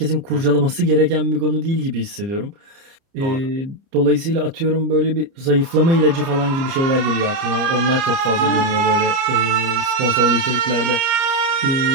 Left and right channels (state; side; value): late; left; 30 ms